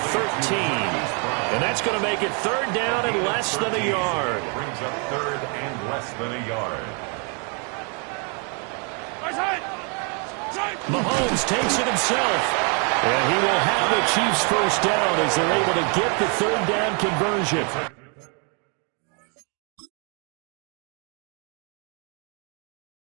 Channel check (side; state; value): left; quieter; 36.9 dB